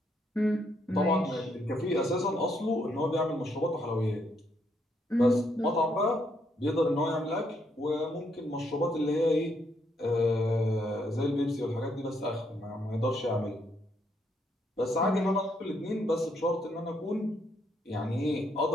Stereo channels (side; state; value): both; normal; correlation 0.74